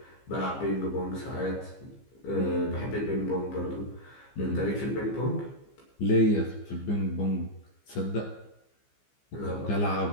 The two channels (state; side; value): late; right; 15 ms